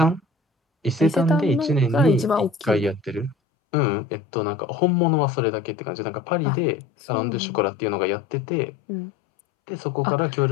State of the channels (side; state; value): right; drops out; at 3.4 s